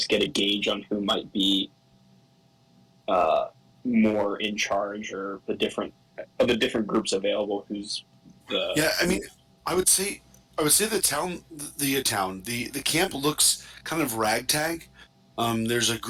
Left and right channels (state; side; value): identical; both; correlation 1.00